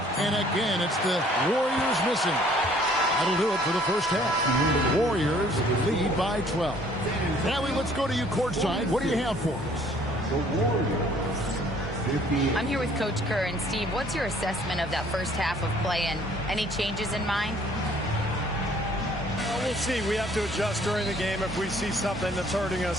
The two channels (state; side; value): normal; both; correlation 0.58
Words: And again, it's the Warriors missing. That'll do it for the first half. The Warriors lead by 12. Allie, let's go to you courtside. What do you have for us? I'm here with Coach Kerr. And Steve, what's your assessment of that first half of play and any changes in mind? Well, we'll see. We have to adjust during the game if we see something that's hurting